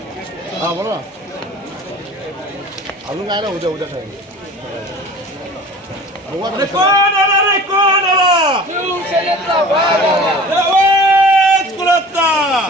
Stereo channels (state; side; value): normal; both; correlation 0.42